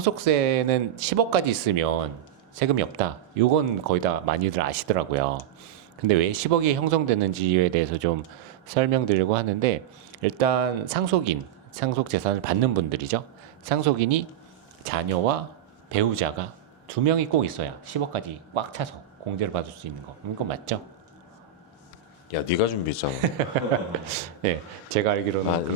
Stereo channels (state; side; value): quieter; left; 9.2 dB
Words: 10억까지 있으면 세금이 없다. 요건 거의 다 많이들 아시더라고요. 근데 왜 10억이 형성되는지에 대해서 좀 설명드리려고 하는데 일단 상속 재산을 받는 분들이죠. 상속인이 자녀와 배우자가 두 명이 꼭 있어야 10억까지 꽉 차서 공제를 받을 수 있는 거. 이건 맞죠? 야 네가 준비했잖아. 네, 제가 알기로는